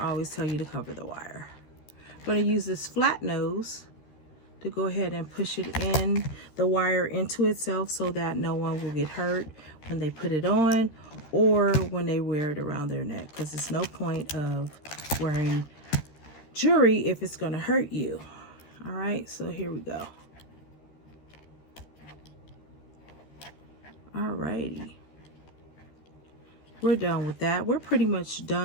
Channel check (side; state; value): right; late; 13 ms